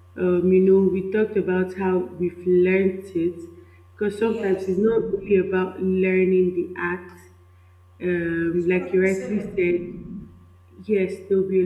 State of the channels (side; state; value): both; identical; correlation 1.00